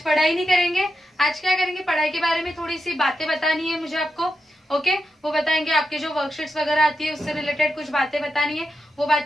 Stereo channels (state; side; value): normal; both; correlation 0.87